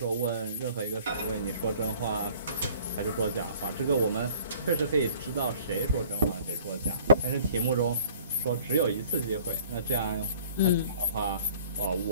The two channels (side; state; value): both; inverted; correlation -0.52